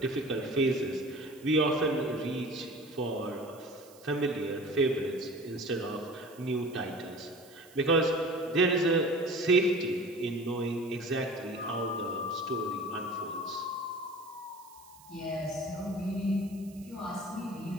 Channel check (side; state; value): right; noise; hiss, 24 dB below the sound